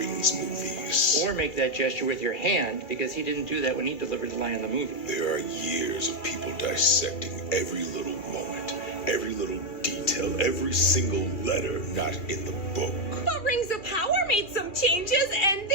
movies. Or make that gesture with your hand, because he didn't do that when he delivered the line in the movie. There are years of people dissecting every little moment, every little detail, every single letter not in the book. But Rings of Power made some changes, and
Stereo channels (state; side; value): late; right; 2.7 ms